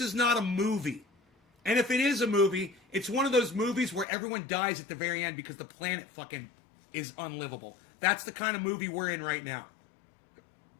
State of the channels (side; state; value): right; drops out; at 4.0 s